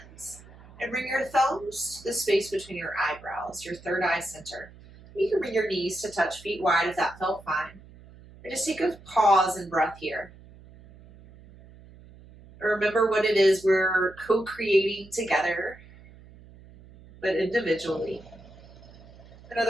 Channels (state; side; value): noise; right; hum, 21 dB below the sound